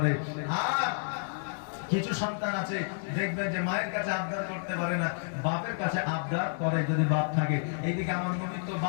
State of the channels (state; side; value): silent; right; digital silence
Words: আর কিছু সন্তান আছে দেখবেন যে মায়ের কাছে আবদার করতে পারে না, বাপের কাছে আবদার করে, যদি বাপ থাকে। এইদিকে আমার নবী তো